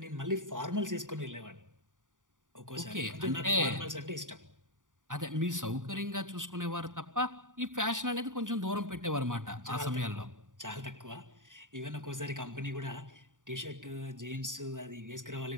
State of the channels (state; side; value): late; left; 0.88 ms